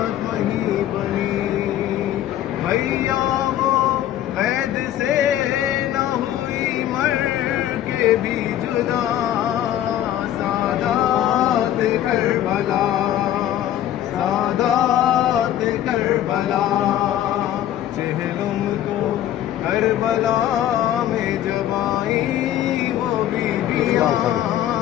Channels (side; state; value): right; quieter; 11.9 dB